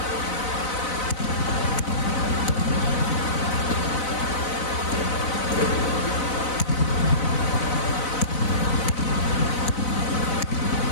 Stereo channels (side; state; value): right; late; 4.0 ms